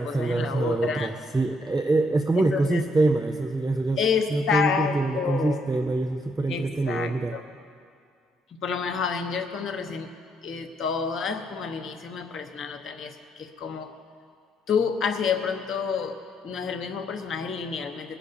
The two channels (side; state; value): both; normal; correlation 0.74